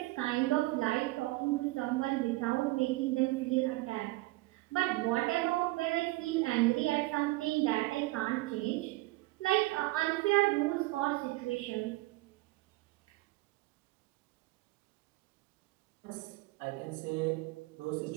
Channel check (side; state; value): left; quieter; 20.6 dB